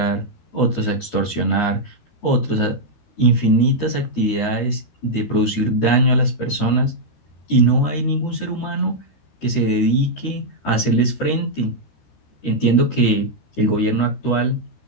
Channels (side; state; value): right; late; 13 ms